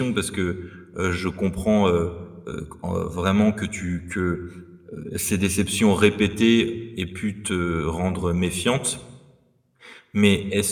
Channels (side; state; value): both; identical; correlation 1.00